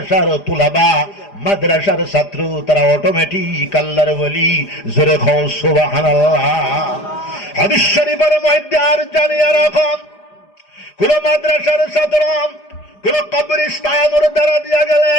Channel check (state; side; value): late; right; 4.9 ms